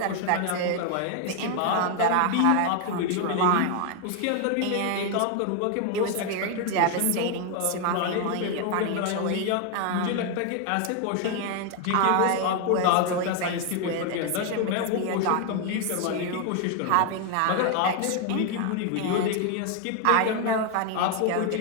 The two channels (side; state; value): both; different; correlation 0.01